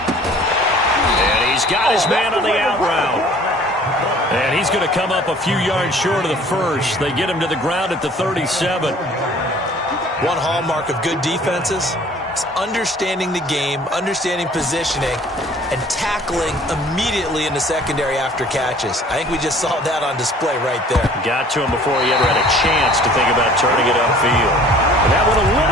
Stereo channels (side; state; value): both; normal; correlation 0.51